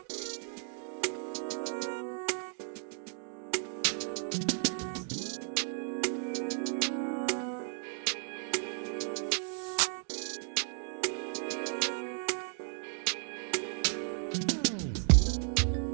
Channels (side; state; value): left; silent; 55 dB below the other